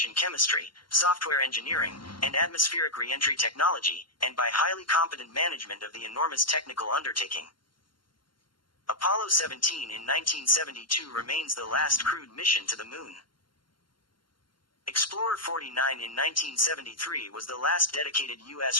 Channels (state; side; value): late; right; 0.72 ms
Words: chemistry, software engineering, and atmospheric re-entry technology, and by highly competent management of the enormous technical undertaking. Apollo 17 in 1972 remains the last crewed mission to the moon. Explorer 49 in 1973 was the last dedicated